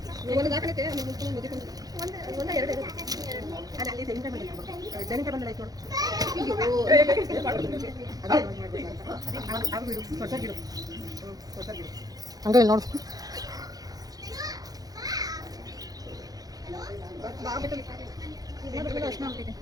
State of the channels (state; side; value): late; left; 0.18 ms